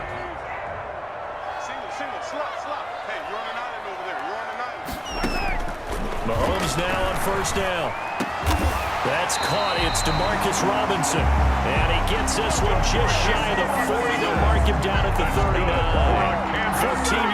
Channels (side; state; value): both; identical; correlation 1.00